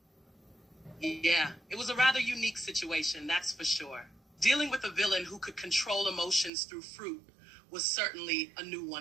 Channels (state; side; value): drops out; left; at 6.5 s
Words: Yeah, it was a rather unique situation, that's for sure. Dealing with a villain who could control emotions through fruit was certainly a new